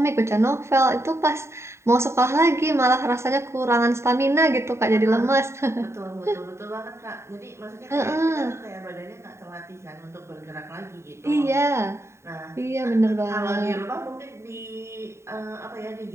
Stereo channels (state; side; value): late; left; 0.13 ms